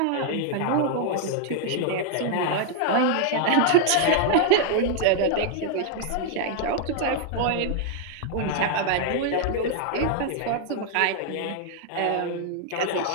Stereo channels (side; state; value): both; different; correlation 0.00